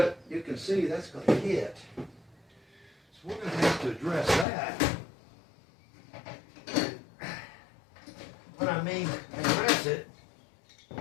you can see that's going to hit. So we're going to have to address that. When I mean address it,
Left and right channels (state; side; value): drops out; right; at 4.5 s